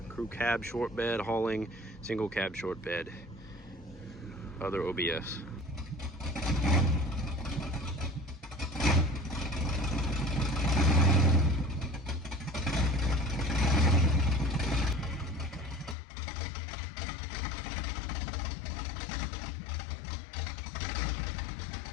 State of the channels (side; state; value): right; drops out; at 16.0 s